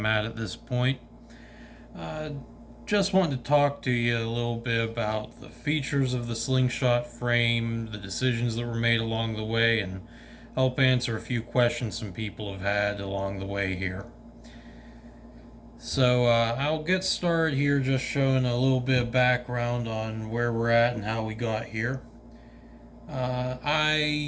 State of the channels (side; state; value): both; identical; correlation 1.00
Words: at this point. Uh, just wanted to talk to you a little bit about the features of the slingshot frame, the decisions that were made along the way, and help answer a few questions some people have had along the way here. So I'll get started here just showing a little bit of background on where we're at and how we got here.